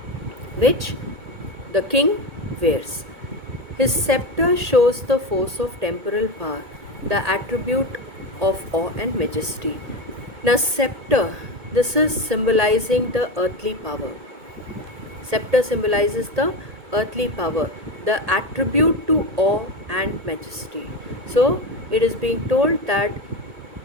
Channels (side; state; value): left; late; 1.8 ms